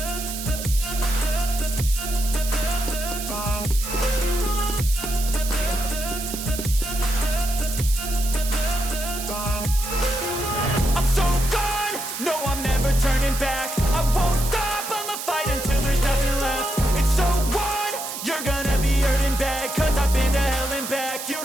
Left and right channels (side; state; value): right; noise; hiss, 7 dB below the sound